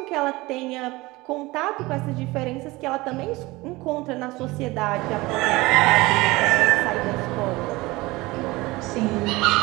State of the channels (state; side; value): quieter; left; 21.3 dB